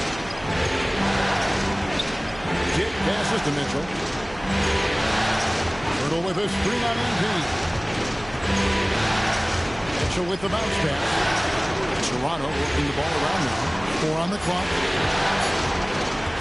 Dick passes to Mitchell. Pirtle with a screen on MP. Mitchell with the bounce pass. Toronto working the ball around now. 4 on the clock.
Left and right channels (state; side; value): noise; right; hum, 18 dB below the sound